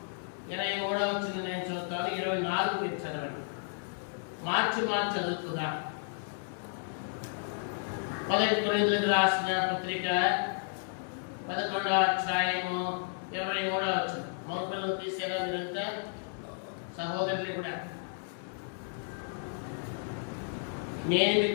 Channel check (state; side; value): silent; right; digital silence